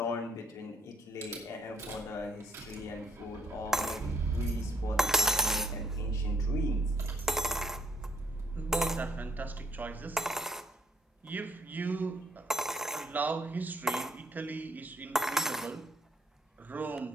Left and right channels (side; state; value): both; normal; correlation 0.67